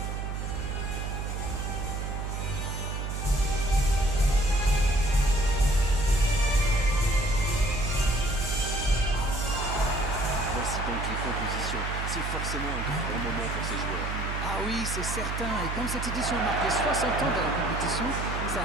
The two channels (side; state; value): right; noise; hum, 4 dB below the sound